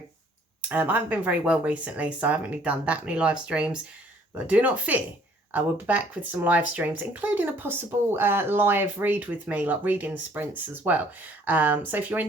I haven't been very well recently, so I haven't really done that many live streams, but do not fear. I will be back with some live streams, including a possible live read with me, like reading sprints as well. So if you're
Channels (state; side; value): normal; both; correlation 0.59